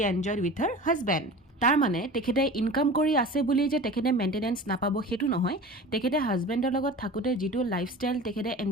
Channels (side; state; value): both; normal; correlation 0.37